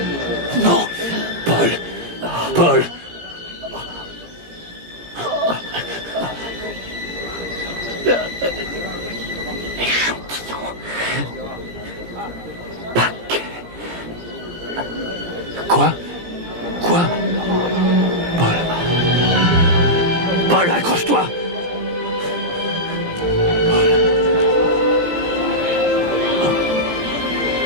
Non, Paul. Paul. Échantillon. Paquet. Quoi? Quoi? Paul. Paul, accroche-toi.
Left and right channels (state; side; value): late; left; 17 ms